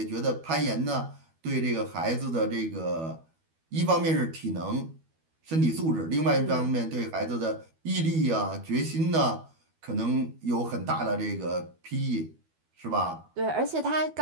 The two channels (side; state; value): left; late; 12 ms